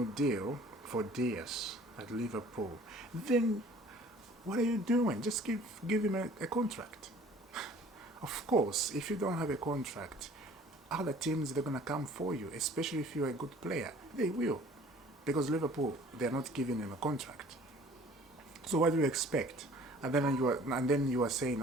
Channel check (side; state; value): both; normal; correlation 0.51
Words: deal for Diaz at Liverpool. Then what are you doing? Just give him a contract. Of course, if you don't have a contract, other teams, they're going to come for you, especially if you're a good player. They will. Because Liverpool, they're not giving him a contract. So what do you expect? And then you are saying,